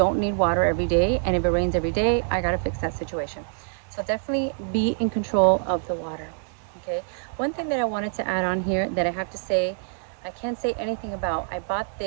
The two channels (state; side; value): silent; left; digital silence